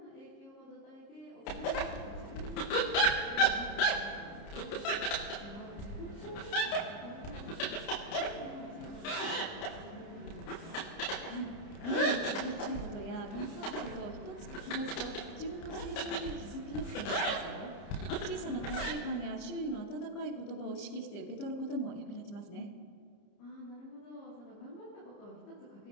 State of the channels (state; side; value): late; right; 30 ms